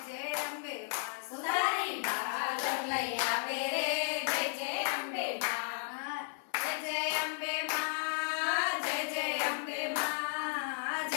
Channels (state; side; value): silent; right; 55 dB below the other